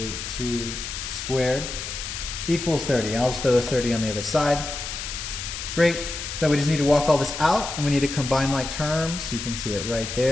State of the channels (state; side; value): noise; left; hiss, 7 dB below the sound